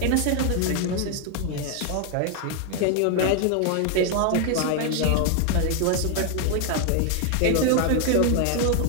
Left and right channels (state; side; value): different; both; correlation 0.01